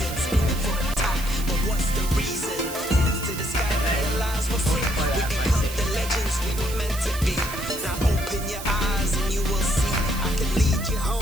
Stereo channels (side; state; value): right; noise; hiss, 11 dB below the sound